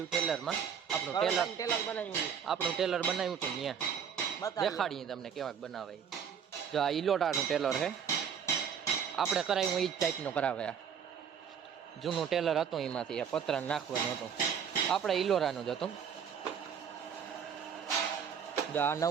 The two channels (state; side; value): quieter; left; 7.5 dB